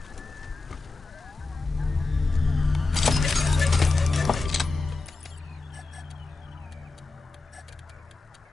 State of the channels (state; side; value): quieter; right; 3.6 dB